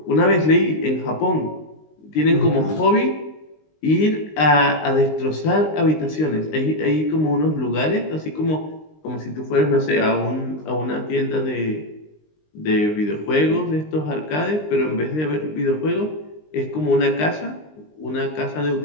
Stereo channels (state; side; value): late; right; 19 ms